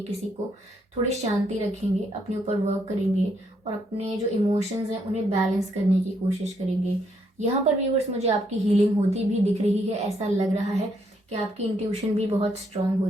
किसी को, थोड़ी शांति रखेंगे, अपने ऊपर वर्क करेंगे, और अपने जो इमोशंस हैं उन्हें बैलेंस करने की कोशिश करेंगे। यहाँ पर व्यूअर्स मुझे आपकी हीलिंग होती भी दिख रही है, ऐसा लग रहा है कि आपकी इंट्यूशन भी बहुत स्ट्रांग हो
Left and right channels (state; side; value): normal; both; correlation 0.73